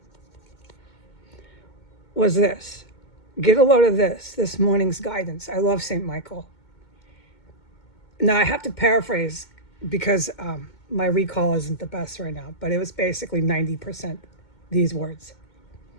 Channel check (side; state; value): right; late; 2.2 ms